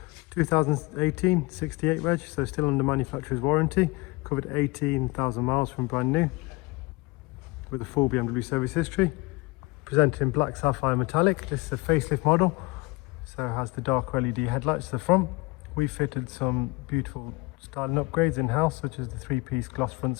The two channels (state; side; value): quieter; right; 23.7 dB